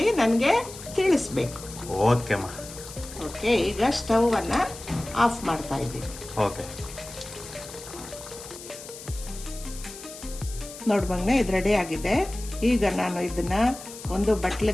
ನನಗೆ ತಿಳಿಸ್ಬೇಕು. ಓಕೆ ಅಮ್ಮ. ಓಕೆ, ಈಗ ಸ್ಟವನ್ನು ಆಫ್ ಮಾಡ್ತಾ ಇದ್ದೀನಿ. ಓಕೆ. ನೋಡ್ಬಂಗ್ನೆ ಇದು ರೆಡಿ ಆಗಿದೆ. ಈಗ ನಾನು ಇದನ್ನು ಒಂದು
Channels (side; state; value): left; noise; hiss, 14 dB below the sound